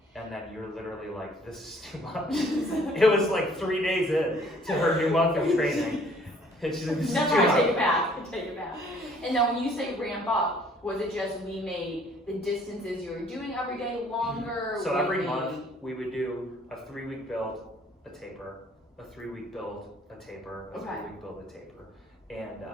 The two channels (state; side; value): normal; both; correlation 0.58